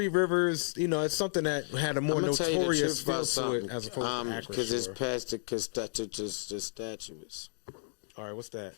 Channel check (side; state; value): right; silent; digital silence